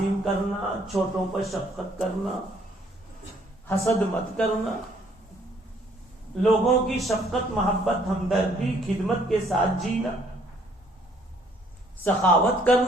کرنا، چھوٹوں پر شفقت کرنا، حسد مت کرنا، لوگوں کی شفقت، محبت، ہمدردی، خدمت کے ساتھ جینا، سخاوت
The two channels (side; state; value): both; normal; correlation 0.64